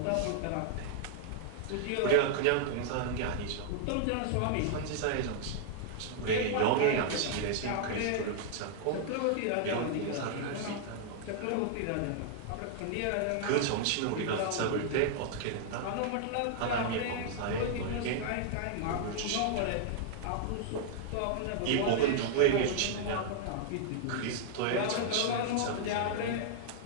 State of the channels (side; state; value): both; different; correlation -0.01